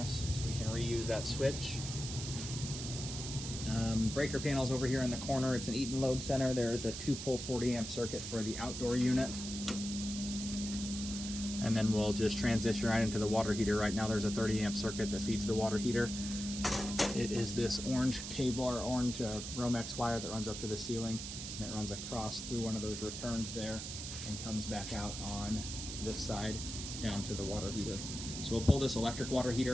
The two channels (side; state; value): right; noise; hiss, 7 dB below the sound